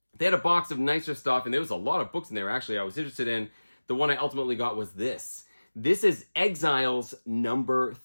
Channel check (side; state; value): both; inverted; correlation -1.00